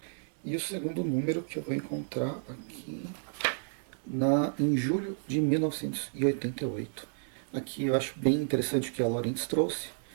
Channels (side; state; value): left; silent; digital silence